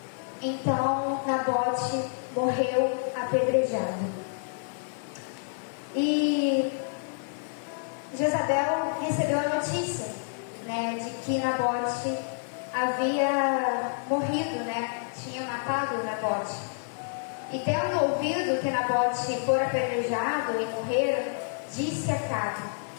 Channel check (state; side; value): silent; right; 59 dB below the other